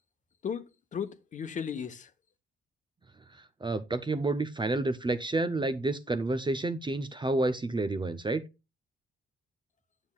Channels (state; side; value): normal; both; correlation 0.70